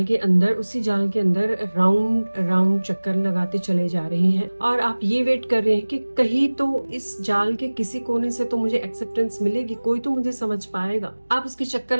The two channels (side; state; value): both; inverted; correlation -1.00